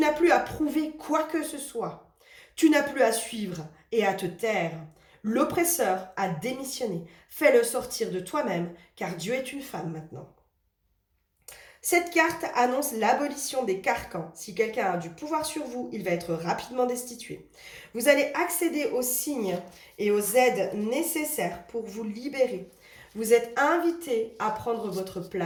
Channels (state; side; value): identical; both; correlation 1.00